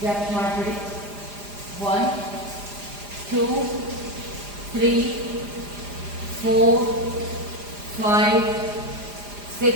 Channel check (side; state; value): left; late; 4.9 ms